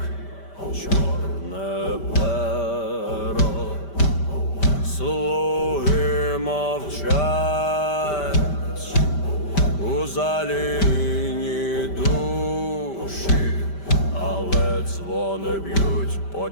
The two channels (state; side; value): late; right; 5.1 ms